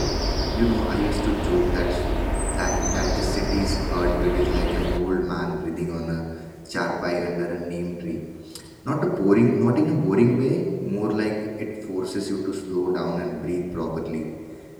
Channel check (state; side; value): identical; both; correlation 1.00